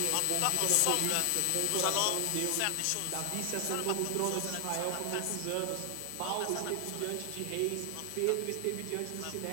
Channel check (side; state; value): both; different; correlation 0.00